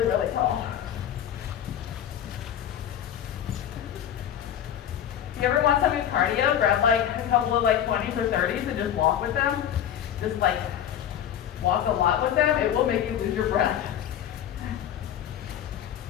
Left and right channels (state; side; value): quieter; right; 10.1 dB